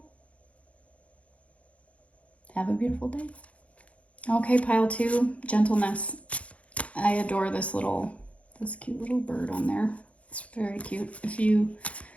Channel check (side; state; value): right; late; 0.064 ms